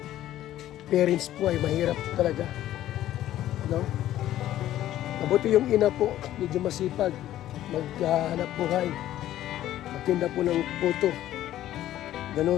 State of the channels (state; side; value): quieter; right; 13.2 dB